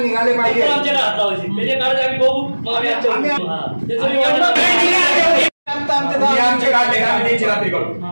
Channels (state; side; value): inverted; both; correlation -1.00